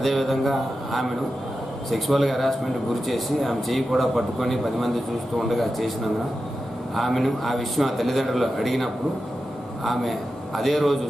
ఆమెను సెక్సువల్గా హెరాస్మెంట్ గురి చేసి ఆమె చేయి కూడా పట్టుకొని 10 మంది చూస్తూ ఉండగా చేసినందున ఆమెను ఆ విషయం ఆ తల్లిదండ్రులు అడిగినప్పుడు ఆమె అదే రోజు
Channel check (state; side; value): normal; both; correlation 0.91